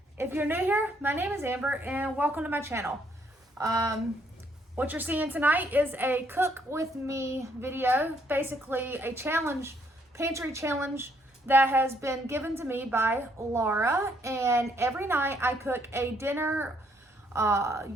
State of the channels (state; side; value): normal; both; correlation 0.69